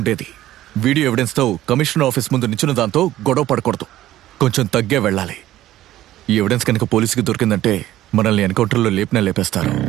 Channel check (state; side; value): quieter; left; 14.2 dB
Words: వీడియో ఎవిడెన్స్ తో కమిషనర్ ఆఫీస్ ముందు నించిన దాంతో గొడవ పడకూడదు. కొంచెం తగ్గే వెళ్ళాలి. ఈ ఎవిడెన్స్ కనుక పోలీసుకి దొరికిందంటే మనల్ని ఎన్కౌంటర్లో లేపేస్తారు.